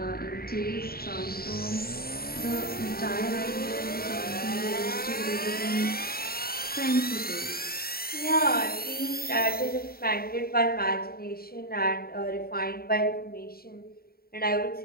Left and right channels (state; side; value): late; right; 0.44 ms